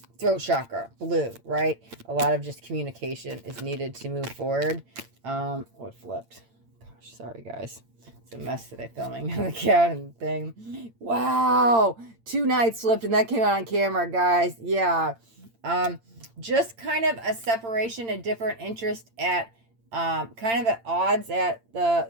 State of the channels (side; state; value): left; late; 8.8 ms